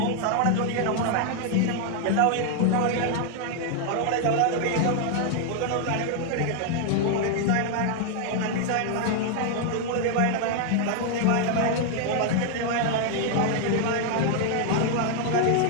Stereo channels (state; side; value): different; both; correlation 0.00